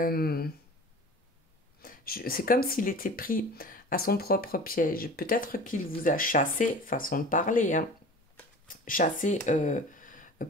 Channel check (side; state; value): both; normal; correlation 0.40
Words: c'est comme s'il était pris à son propre piège. Peut-être qu'il vous a chassé, façon de parler, hein, chassé,